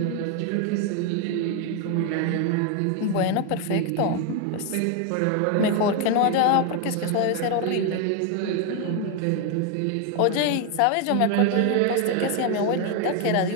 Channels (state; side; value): different; both; correlation 0.01